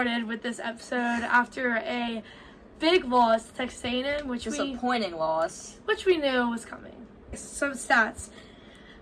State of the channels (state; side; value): identical; both; correlation 1.00